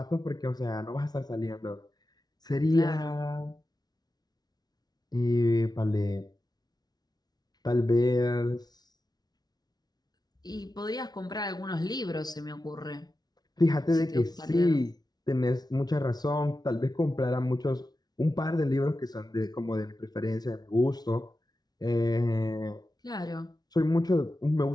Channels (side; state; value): right; late; 0.19 ms